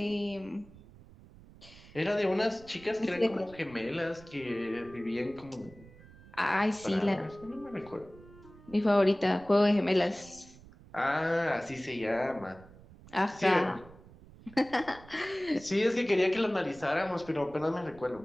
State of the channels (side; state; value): right; noise; rumble, 21 dB below the sound